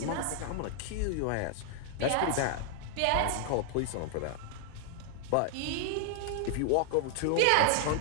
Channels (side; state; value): both; different; correlation 0.00